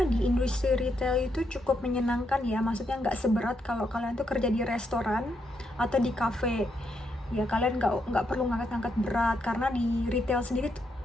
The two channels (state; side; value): normal; both; correlation 0.79